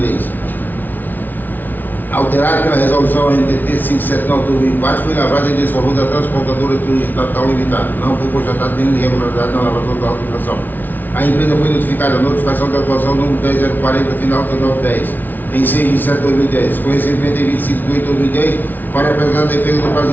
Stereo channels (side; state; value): right; late; 0.085 ms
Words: Alterado pela resolução NTT 579/2004, foi lavrado em desfavor da transportadora turística Natal Limitada. Não foi constatada nenhuma irregularidade na lavratura da auto-infração. A empresa foi notificada, a notificação da atuação número 10040, final 3910, em 6/7/2010, com recebimento em 25/8/2010, para apresentar a defesa no prazo